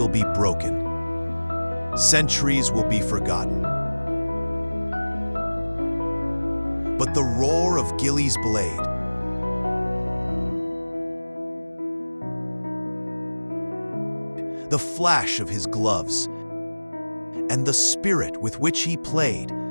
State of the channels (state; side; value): inverted; both; correlation -1.00